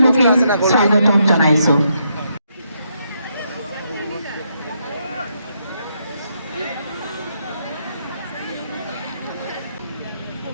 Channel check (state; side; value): inverted; both; correlation -0.77